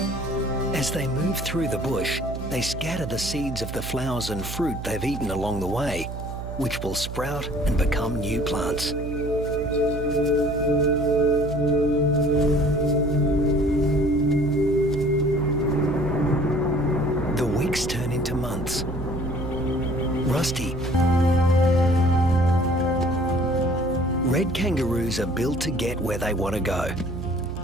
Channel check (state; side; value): noise; right; hum, 8 dB below the sound